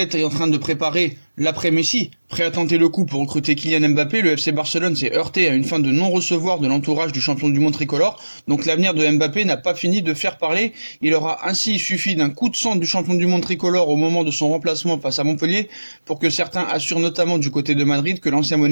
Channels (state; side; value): inverted; both; correlation -1.00